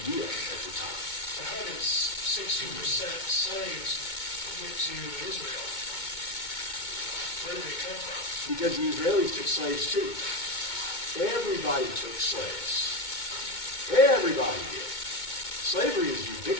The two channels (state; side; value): late; right; 2.2 ms